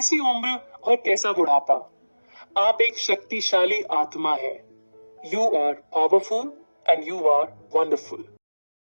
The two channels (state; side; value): inverted; both; correlation -1.00